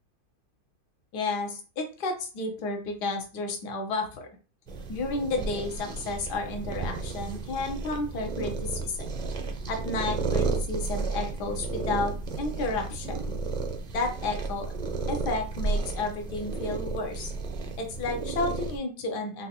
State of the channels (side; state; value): right; late; 2.5 ms